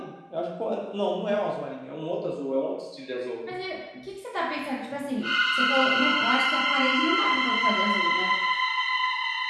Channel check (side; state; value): both; identical; correlation 1.00